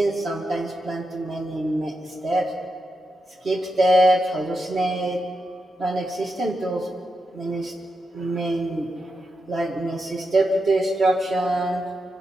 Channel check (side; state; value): both; normal; correlation 0.86